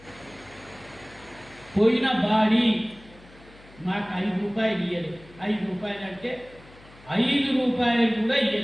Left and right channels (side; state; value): left; noise; hum, 24 dB below the sound